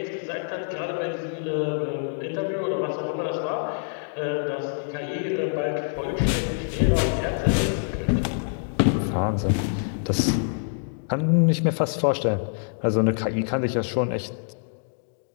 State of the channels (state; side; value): silent; right; digital silence